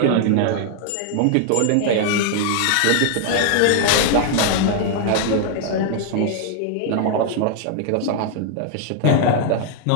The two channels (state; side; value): different; both; correlation 0.00